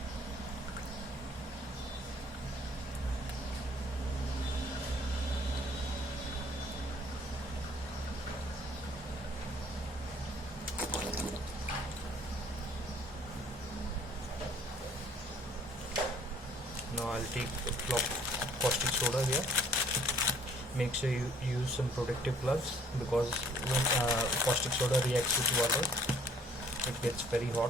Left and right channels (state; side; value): normal; both; correlation 0.58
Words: Now I'll take a block caustic soda here. Make sure you use some protective gloves because when caustic soda reacts with water, it gets very hot.